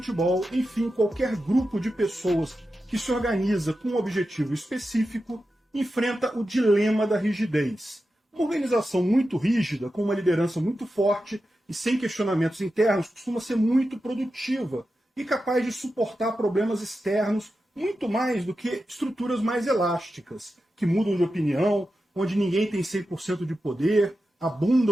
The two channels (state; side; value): normal; both; correlation 0.91